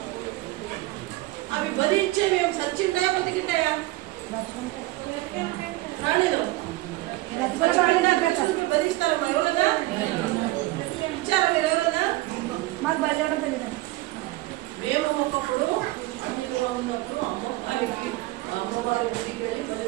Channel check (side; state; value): left; quieter; 19.1 dB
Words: అవి బలిచ్చేవి ఏం సచ్చింటాయా బతికింటాయా? రాణిలో బలిస్తారమ్మా. ఎవరన్నా ఇచ్చారా మీరు? ఎవరన్నా? మాకు బలిచడం తెలియదు. మేము ఒకప్పుడు అన్నిలుగా ఉన్నప్పుడు అమ్మవారి గుడికి వెళ్ళి బలి